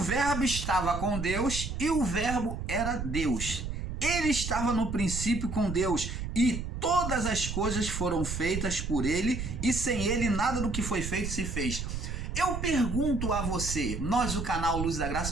estava com Deus e o Verbo era Deus. Ele estava no princípio com Deus e todas as coisas foram feitas por ele e sem ele nada do que foi feito se fez. Eu pergunto a você, nós do canal Luz da Graça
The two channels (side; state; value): right; noise; rumble, 5 dB below the sound